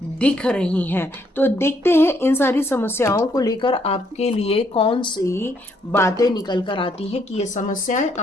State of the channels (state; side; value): normal; both; correlation 0.71